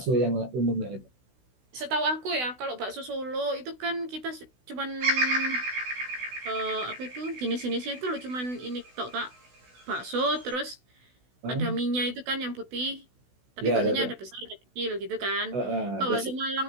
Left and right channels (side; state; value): left; late; 16 ms